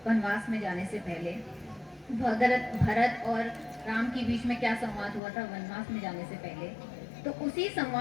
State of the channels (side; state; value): right; drops out; at 5.2 s